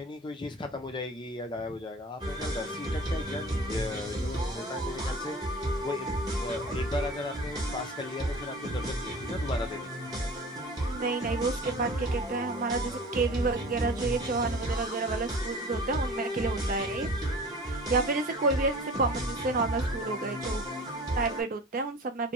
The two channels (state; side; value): normal; both; correlation 0.41